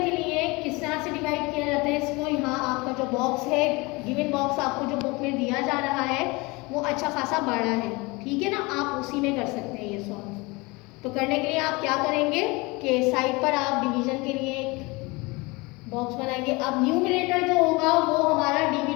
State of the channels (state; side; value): quieter; right; 25.0 dB